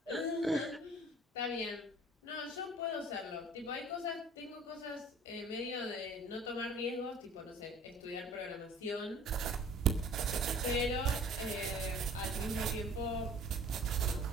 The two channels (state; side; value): normal; both; correlation 0.49